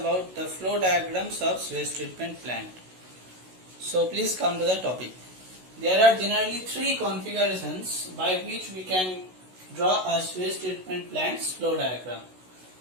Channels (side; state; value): left; late; 16 ms